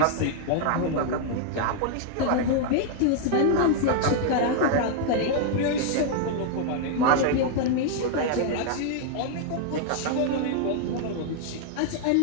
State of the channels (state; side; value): different; both; correlation 0.00